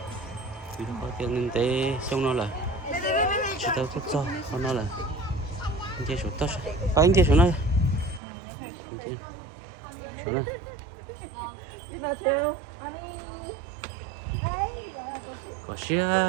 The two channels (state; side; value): drops out; left; at 8.2 s